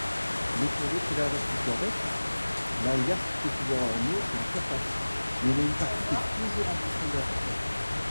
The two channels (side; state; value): both; inverted; correlation -1.00